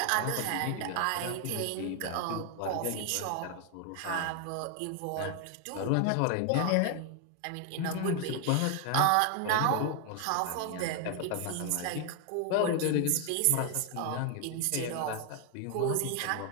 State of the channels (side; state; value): both; different; correlation 0.00